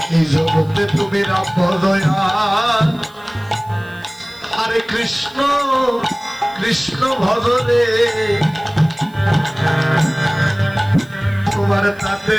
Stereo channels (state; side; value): noise; right; hiss, 28 dB below the sound